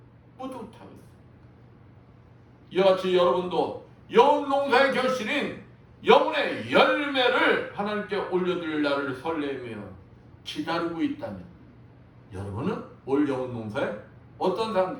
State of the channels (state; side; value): identical; both; correlation 1.00